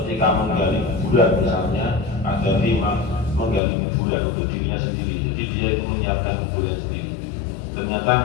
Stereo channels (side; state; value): right; drops out; at 3.6 s